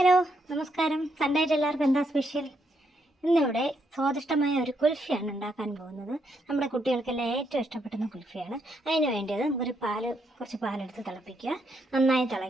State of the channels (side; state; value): both; normal; correlation 0.77